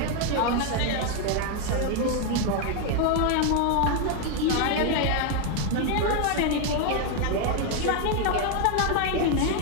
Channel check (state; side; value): different; both; correlation 0.01